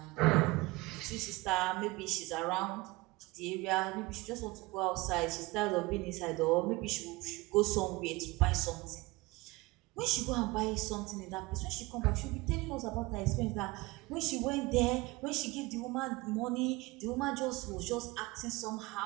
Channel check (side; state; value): left; quieter; 22.3 dB